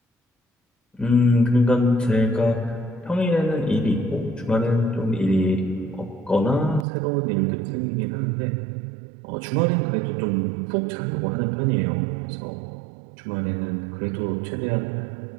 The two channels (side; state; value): left; drops out; at 6.9 s